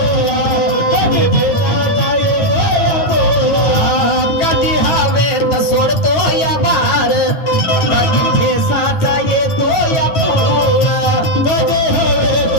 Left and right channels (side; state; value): right; late; 9.2 ms